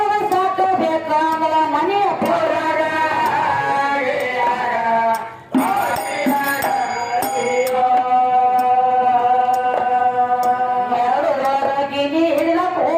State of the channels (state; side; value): identical; both; correlation 1.00